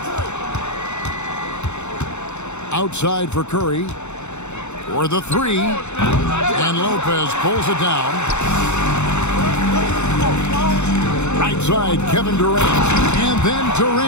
Outside for Curry. For the three. And Lopez pulls it down. Right side, Kevin Durant. And then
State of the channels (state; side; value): late; right; 0.82 ms